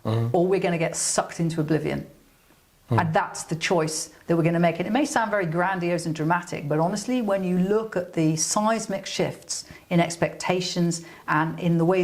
or we're going to get sucked into oblivion. And that's the choice that we're going to make. And it may sound very grandiose and dramatic, but honestly, when you look at the seismic shifts in expectations and in the way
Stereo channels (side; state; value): both; identical; correlation 1.00